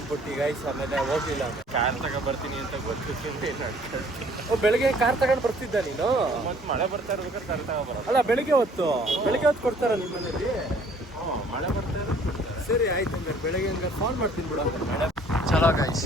ಗೈಸ್. ಆಮೇಲೆ ಹೋಗ್ಲಿಲ್ಲ. ಕಾರ್ ತಗೊಂಡ್ಬರ್ತೀನಿ ಅಂತ ಗೊತ್ತಿತ್ತು. ಬೆಳಗ್ಗೆ ಕಾರ್ ತಗೊಂಡು ಬರ್ತಿದ್ದ ನೀನು? ಮತ್ತೆ ಮಳೆ ಬರ್ತಾ ಇರ್ಬೇಕಾದ್ರೆ ಕಾರ್ ತಗೊಂಡ್ಬರೋದು. ಅಲ್ಲ, ಬೆಳಿಗ್ಗೆ ಹೊತ್ತು ಕೊಡ್ತಾರ ನಿಮ್ಮ ಮನೇಲಿ? ಮಳೆ ಬರ್ತಾ ಇರೋದು. ಸರಿ ಆಯ್ತು, ಹಂಗಾರೆ ಬೆಳಗ್ಗೆ ಹಂಗಾರೆ ಫೋನ್ ಮಾಡ್ತೀನಿ ಬಿಡು. ಮಳೆ ಚಲೋ ಗೈಸ್.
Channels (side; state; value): both; normal; correlation 0.57